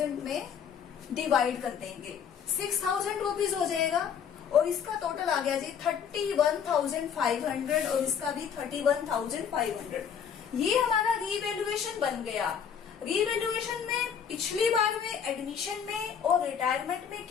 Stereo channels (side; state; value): right; quieter; 7.6 dB